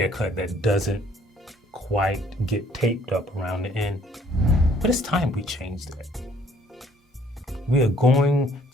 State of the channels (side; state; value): both; normal; correlation 0.60